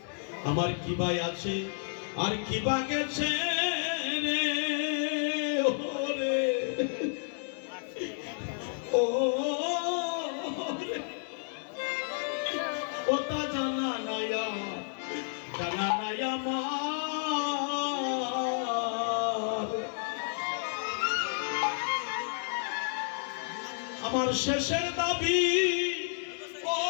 আমার কি ভাই আছে আর কি বা গেছে রে ওরে, ও রে, ওটা জানা নাই আমার। আমার শেষের দাবি ও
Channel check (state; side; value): silent; right; 57 dB below the other